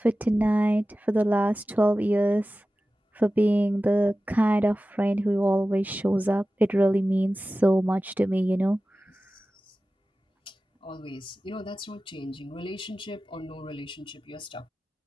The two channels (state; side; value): normal; both; correlation 0.95